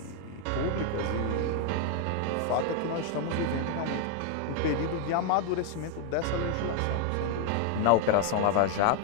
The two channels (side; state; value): both; different; correlation 0.00